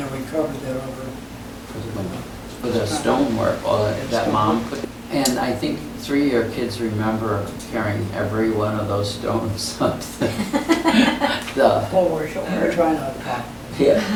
we covered that over. For the window. For the stonework, all that mom put. And I think 3 of your kids remember carrying every one of those stones up the. We're trying not to pop. Yeah,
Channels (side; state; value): both; identical; correlation 1.00